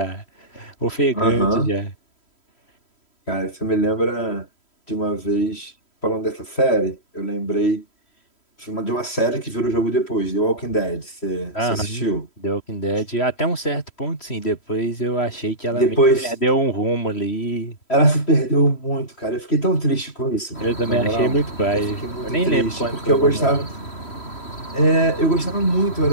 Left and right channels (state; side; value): late; right; 3.1 ms